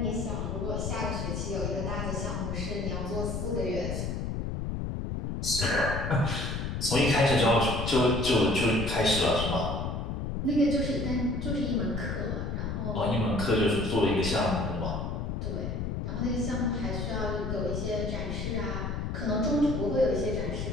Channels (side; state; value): left; noise; rumble, 3 dB below the sound